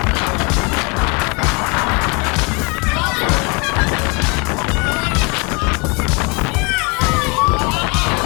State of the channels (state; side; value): quieter; right; 29.7 dB